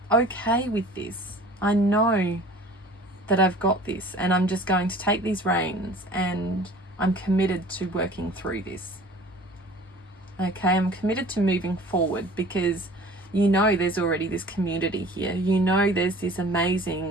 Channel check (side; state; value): both; normal; correlation 0.46